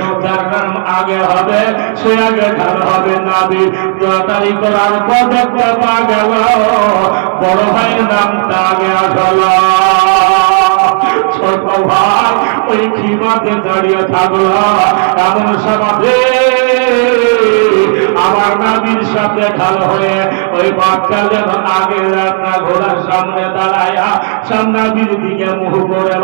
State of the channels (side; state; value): left; silent; 57 dB below the other